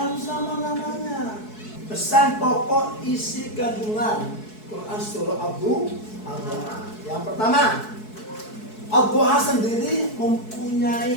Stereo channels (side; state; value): right; late; 4.7 ms